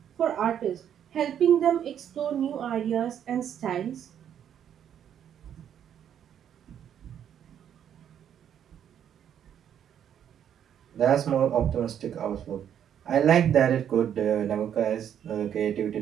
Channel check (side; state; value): left; quieter; 9.4 dB